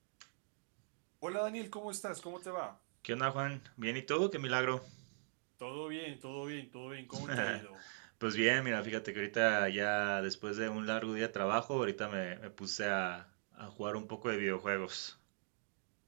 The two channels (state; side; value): silent; left; digital silence